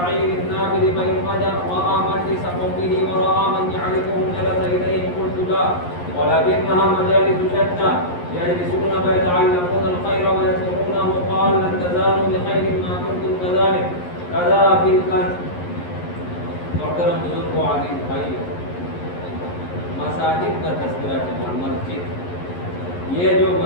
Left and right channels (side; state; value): right; late; 11 ms